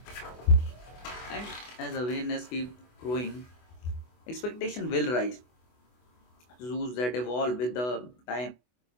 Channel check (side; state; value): right; late; 24 ms